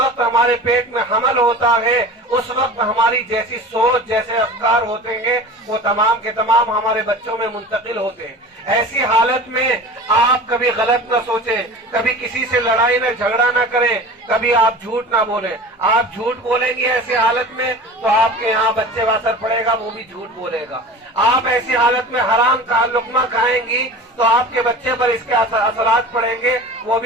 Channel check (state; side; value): normal; both; correlation 0.36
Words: ہمارے پیٹ میں حمل ہوتا ہے، اس وقت ہماری جیسی سوچ، جیسے افکار ہوتے ہیں، وہ تمام کے تمام ہمارے بچوں میں منتقل ہوتے ہیں۔ ایسی حالت میں آپ کبھی غلط نہ سوچیں، کبھی کسی سے لڑائی نہ جھگڑا نہ کریں، کبھی آپ جھوٹ نہ بولیں۔ آپ جھوٹ بولیں گے ایسی حالت میں تو آپ کے یہاں بچے پر اثر پڑے گا، وہ بھی جھوٹ بولے گا۔ آپ ایسی حالت میں حرام کا لقمہ کھائیں گی تو آپ کے بچے پر اس کے اثرات پڑیں گے، وہ